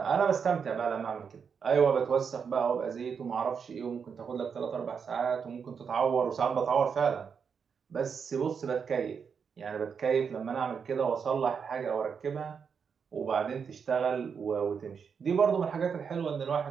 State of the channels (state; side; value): quieter; left; 6.4 dB